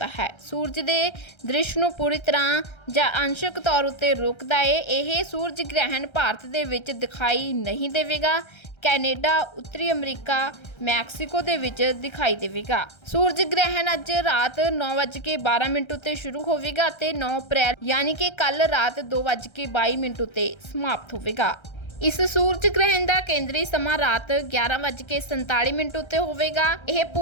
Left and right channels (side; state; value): right; late; 1.3 ms